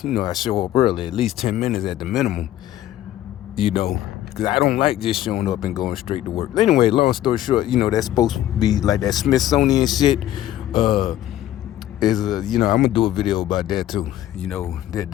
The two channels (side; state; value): right; quieter; 13.1 dB